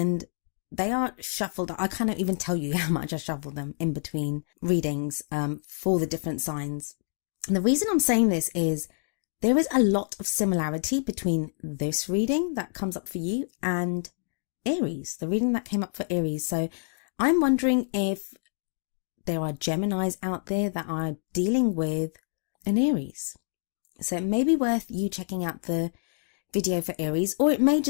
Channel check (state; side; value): silent; right; digital silence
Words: they are shuffled. I can't even tell you how much I shuffle them in between readings, for the different signs. And the reason I'm saying this is there is a lot of similarity between this reading that comes up for you and Aries, the reading that came up for Aries. So I'm wondering if there are Geminis out there that are dealing with an Aries. So it may be worth you checking out the video for Aries, or it may